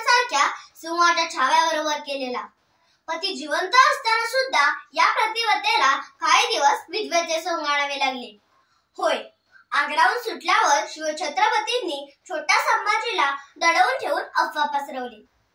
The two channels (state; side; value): identical; both; correlation 1.00